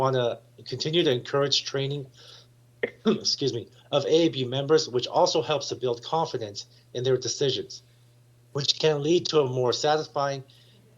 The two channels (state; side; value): identical; both; correlation 1.00